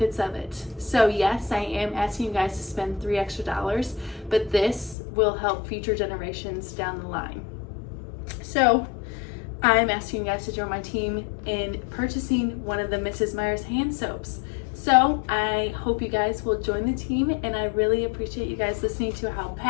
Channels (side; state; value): right; drops out; at 5.0 s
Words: of it. So yes, I am asking you guys to spend $3 extra, but this will help future generations down the line. So I'm asking you guys to join my team in purchasing one of the Mrs. Meyers hand soaps. So I hope you guys will join the team, and I really appreciate you guys listening to how